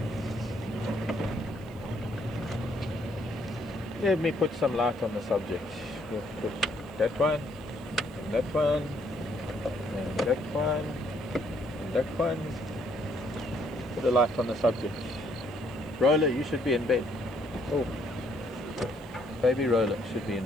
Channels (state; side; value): noise; right; hiss, 28 dB below the sound